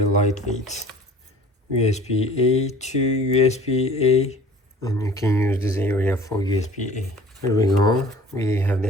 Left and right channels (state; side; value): normal; both; correlation 0.47